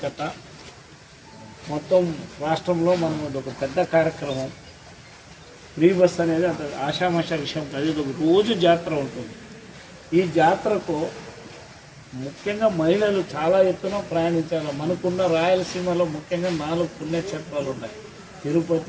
కథ, మొత్తం రాష్ట్రంలో మనం ఒక పెద్ద కార్యక్రమం. ఫ్రీ బస్ అనేది అంత ఆషామాషా విషయం కాదు. ఇది ఒక రోజు జాతర ఉంటుంది. ఈ జాతరకు ముఖ్యంగా మహిళలు చాలా ఎత్తున ప్రయాణించాలి. మనకున్న రాయలసీమలో ముఖ్యంగా 4 పుణ్యక్షేత్రాలు ఉన్నాయి.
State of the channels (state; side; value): identical; both; correlation 1.00